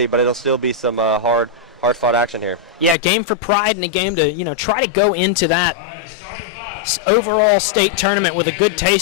but it'll still be some hard-fought action here. Yeah, game for pride and a game to, try to go into that overall state tournament with a good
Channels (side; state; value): right; drops out; at 3.0 s